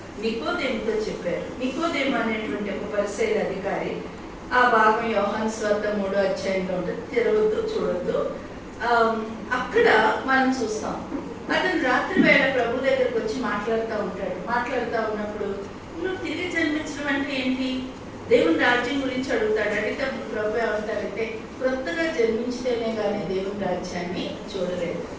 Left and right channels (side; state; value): both; identical; correlation 1.00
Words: నికోదేముతో చెప్పారు. నికోదేము అనేటువంటి ఒక పరిసయ్యుల అధికారి. ఆ భాగం యోహాను సువార్త 3వ అధ్యాయంలో ఉంటుంది. తెరవద్దు, చూడొద్దు. అక్కడ మనం చూస్తాం, అతను రాత్రి వేళ ప్రభు దగ్గరకు వచ్చి మాట్లాడుతూ ఉంటాడు. మాట్లాడుతూ ఉన్నప్పుడు, నువ్వు తిరిగి జన్మించడం అంటే ఏంటి, దేవుని రాజ్యం గురించి అడుగుతాడు. అడిగితే ప్రభు ఏమంటాడంటే, కొత్తగా జన్మించితేనే కానీ దేవుని రాజ్యాన్ని చూడలేదు.